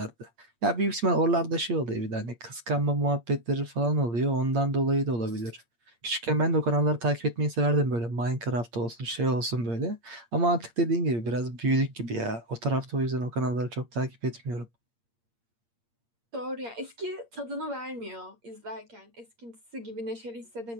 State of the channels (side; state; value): left; late; 8.6 ms